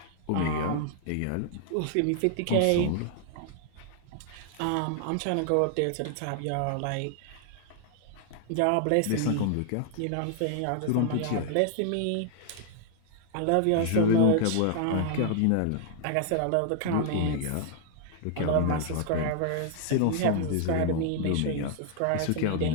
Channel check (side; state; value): both; different; correlation 0.00